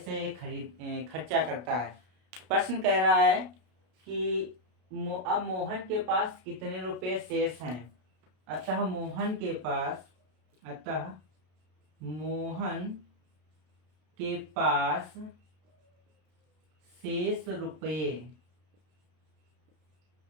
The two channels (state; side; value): late; left; 33 ms